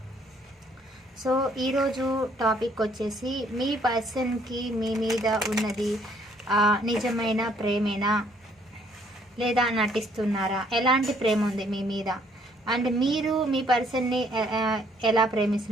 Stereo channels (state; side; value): normal; both; correlation 0.65